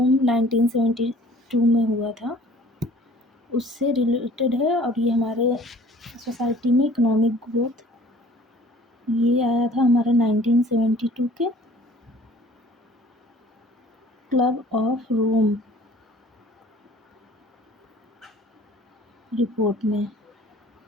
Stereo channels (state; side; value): normal; both; correlation 0.51